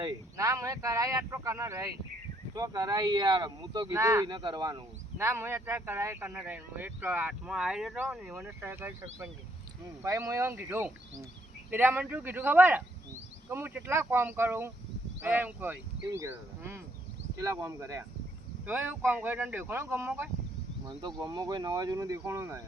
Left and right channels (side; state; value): both; normal; correlation 0.70